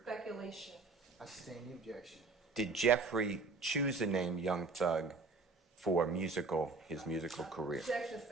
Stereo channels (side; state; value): left; quieter; 3.9 dB